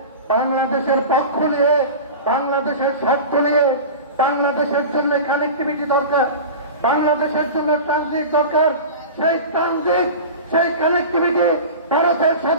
বাংলাদেশের পক্ষ নিয়ে, বাংলাদেশের স্বার্থ নিয়ে, বাংলাদেশের জন্য কানেক্টিভিটি দরকার, বাংলাদেশের জন্য ট্রানজিট দরকার। সেই ট্রানজিট, সেই কানেক্টিভিটি ভারতের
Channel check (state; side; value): inverted; both; correlation -0.32